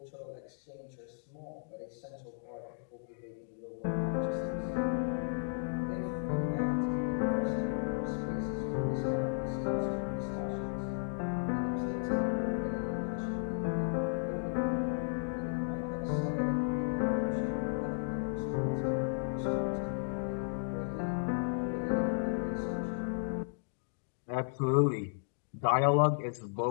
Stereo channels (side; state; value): right; silent; digital silence